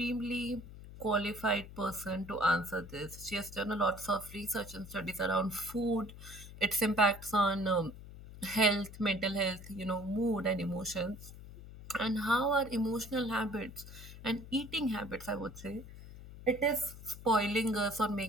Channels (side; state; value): left; noise; hum, 15 dB below the sound